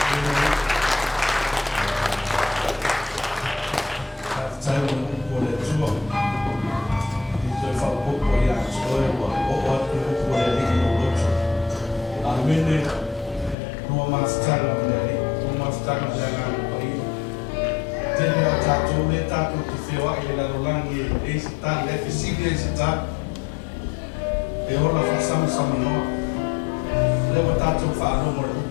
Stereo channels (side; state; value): right; drops out; at 13.6 s